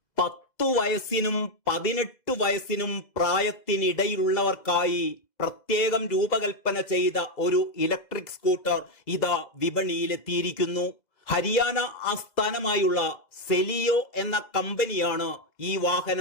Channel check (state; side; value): late; right; 2.0 ms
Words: 10 വയസ്സിനും 18 വയസ്സിനും പ്രായത്തിനിടയിലുള്ളവർക്കായി പ്രത്യേകം രൂപകൽപ്പന ചെയ്ത ഒരു ഇലക്ട്രിക് സ്കൂട്ടർ ഇതാ വിപണിയിലെത്തിയിരിക്കുന്നു. ഹരിയാന ആസ്ഥാനമായുള്ള സെലിയോ എന്ന കമ്പനിയാണ് ഈ